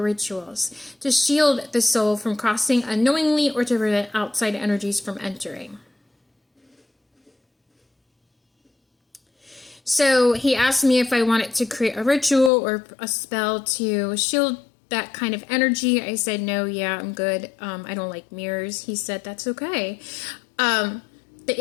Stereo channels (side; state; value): right; drops out; at 12.5 s